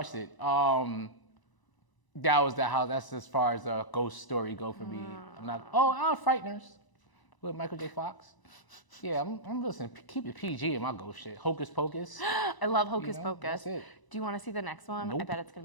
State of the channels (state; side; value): late; right; 1.0 ms